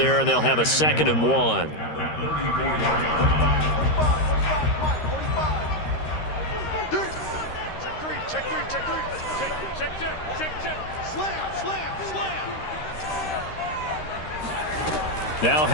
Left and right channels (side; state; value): right; late; 13 ms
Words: and they'll have a 2nd and 1. Now